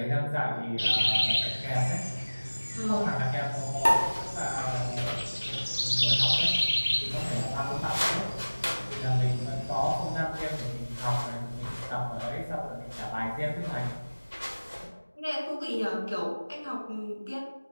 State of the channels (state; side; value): inverted; both; correlation -1.00